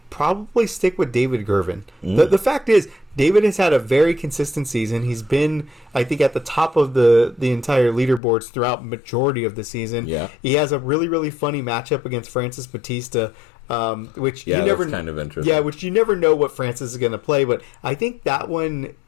probably stick with David Gervin. The fact is, David has had a very consistent season. He's been, I think, at the top of the entire leaderboards throughout majority of the season. Yeah. He has a really, really funny matchup against Francis Batista, which you never that's kind of interesting. Yeah, which you never know what Francis is going to play, but I think that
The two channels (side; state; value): right; drops out; at 8.2 s